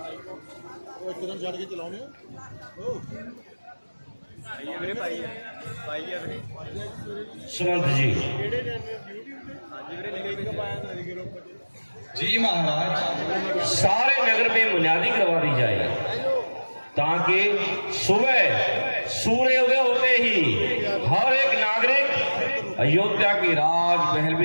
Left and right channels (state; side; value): inverted; both; correlation -1.00